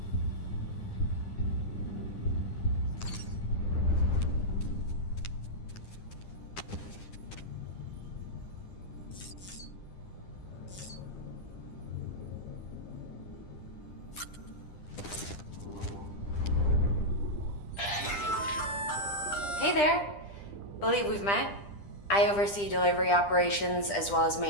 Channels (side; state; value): right; late; 10 ms